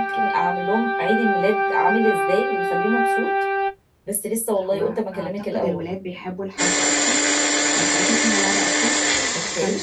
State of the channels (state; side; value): identical; both; correlation 1.00